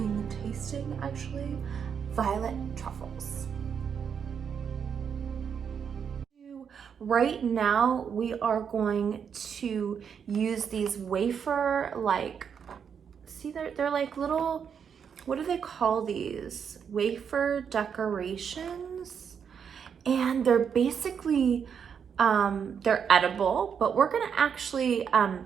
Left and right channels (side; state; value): left; quieter; 7.2 dB